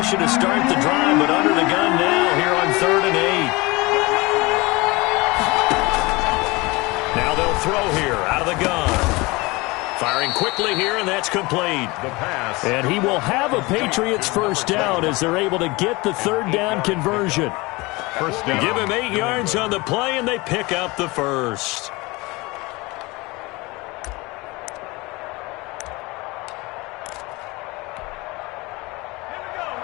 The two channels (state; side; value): quieter; right; 23.8 dB